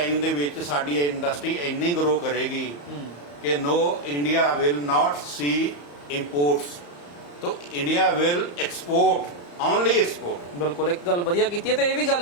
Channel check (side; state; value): right; late; 34 ms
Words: ਦੇ ਵਿੱਚ ਸਾਡੀ ਇੰਡਸਟਰੀ ਇੰਨੀ ਗਰੋ ਕਰੇਗੀ ਕਿ ਇੰਡੀਆ ਵਿਲ ਨਾਟ ਸੀ ਇੰਪੋਰਟਸ, ਤਾਂ India will export, only export. ਬਿਲਕੁਲ, ਇੱਕ ਗੱਲ ਵਧੀਆ ਕੀਤੀ ਹੈ। ਤੇ ਇਹ ਵੀ ਗੱਲ